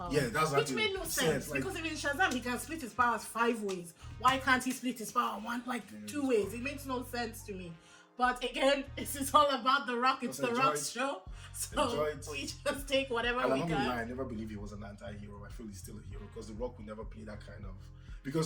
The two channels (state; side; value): identical; both; correlation 1.00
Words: Yeah, that's which made no sense because if in Shazam he can split his powers 5 ways, why can't he split his power 2 ways? It makes no sense to me. But again, this is all about The Rock. It's The Rock's show, so we just take whatever we can. I never believe he was an anti-hero. I feel he's still a hero because The Rock would never play that kind of.